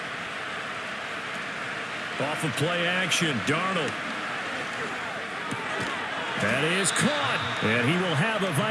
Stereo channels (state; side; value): identical; both; correlation 1.00